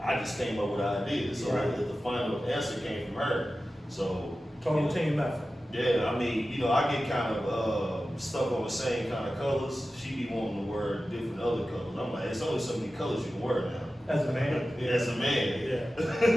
I just came up with ideas. So the final answer came from her. So Total team effort. yeah, I mean, I get kind of stuck on the same kind of colors. She be wanting to wear different other colors. I'm like, it's only so many colors you can wear now. As a man. As a man.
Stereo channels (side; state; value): both; normal; correlation 0.94